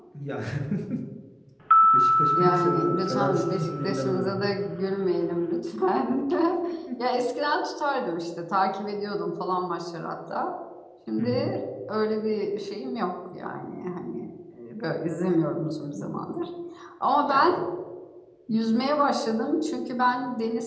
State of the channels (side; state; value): both; identical; correlation 1.00